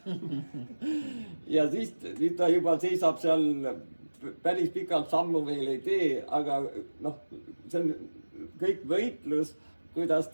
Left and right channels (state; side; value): inverted; both; correlation -1.00